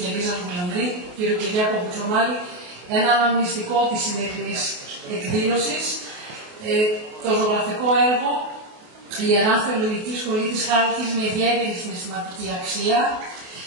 Ελίζα Γουλανδρή, κ. Κυριάκο Κουτσομάλη, ένα αναμνηστικό της σημερινής εκδήλωσης, το ζωγραφικό έργο «Η Ιερά Θεολογική Σχολή της Χάλκης με ιδιαίτερη συναισθηματική αξία».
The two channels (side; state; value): left; late; 28 ms